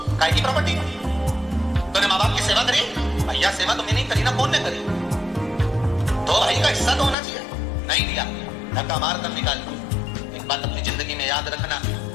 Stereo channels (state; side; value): drops out; right; at 7.2 s